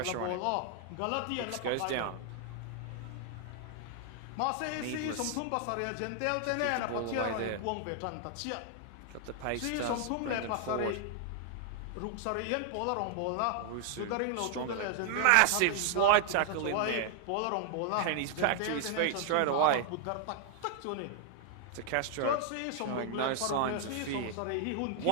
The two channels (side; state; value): both; different; correlation 0.00